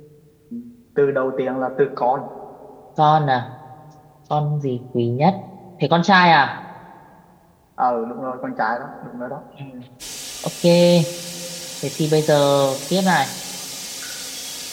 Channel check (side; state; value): both; identical; correlation 1.00